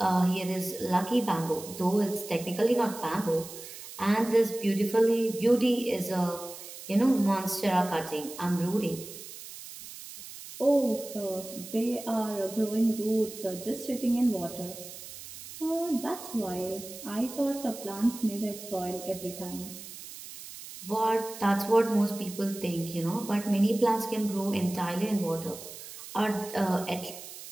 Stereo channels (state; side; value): noise; right; hiss, 13 dB below the sound